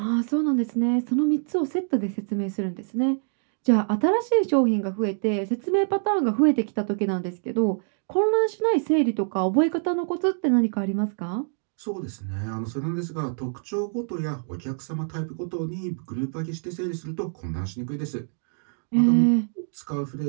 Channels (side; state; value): left; silent; digital silence